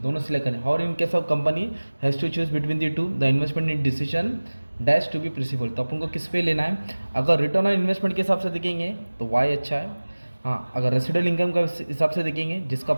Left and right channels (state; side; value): inverted; both; correlation -1.00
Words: दोनों सिलेक्ट करें। और in case of company has to choose between the two, the investment in decision dash to be possible. तो अपन को किस पे लेना है, अगर रिटर्न ऑन इन्वेस्टमेंट के हिसाब से देखेंगे तो वाई अच्छा है। हाँ, अगर रेसिडुअल इनकम का हिसाब से देखेंगे जिसका